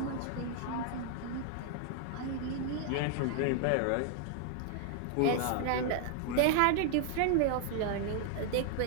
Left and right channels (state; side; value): different; both; correlation 0.00